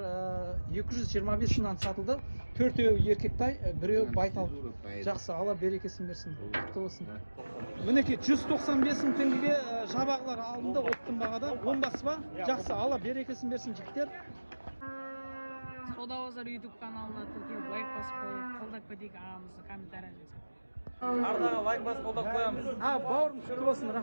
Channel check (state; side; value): inverted; both; correlation -1.00